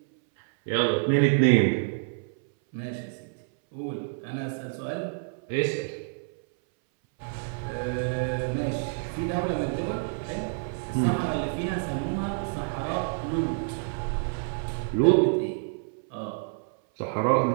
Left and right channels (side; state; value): left; silent; 59 dB below the other